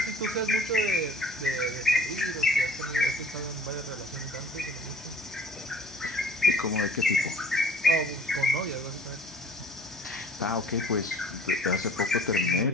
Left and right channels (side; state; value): both; normal; correlation 0.52